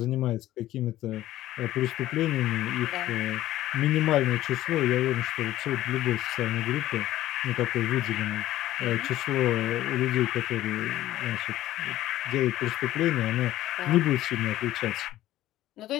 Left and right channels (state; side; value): quieter; right; 14.5 dB